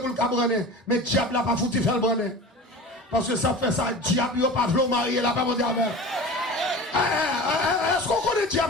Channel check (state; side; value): normal; both; correlation 0.35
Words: le cabrener. Mais le diable n'a pas foutu faire le brener. Parce que ça fait ça, le diable n'a pas voulu marier, là, pas mon diable. Est-ce qu'on connaît le